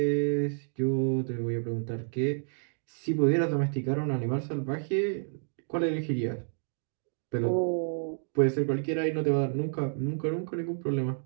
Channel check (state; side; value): silent; left; digital silence